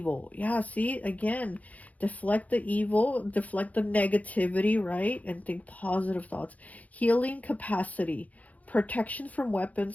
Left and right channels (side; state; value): right; late; 0.073 ms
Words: Yeah, see, again, deflect the evil, deflect the negativity, right? And think positive thoughts. Healing capacity, protection from